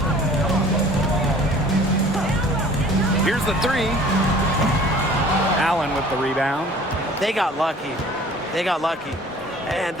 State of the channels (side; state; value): both; normal; correlation 0.49